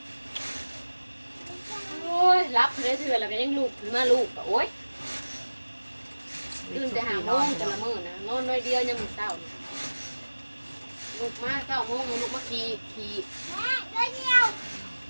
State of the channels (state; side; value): inverted; both; correlation -1.00